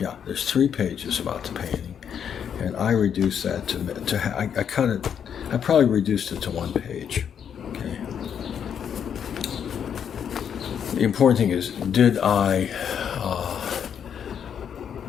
there's 3 pages about the painting, and I reduced that I cut it. I probably reduced it to 1 page. Okay. The important thing is, did I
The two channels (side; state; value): right; quieter; 8.1 dB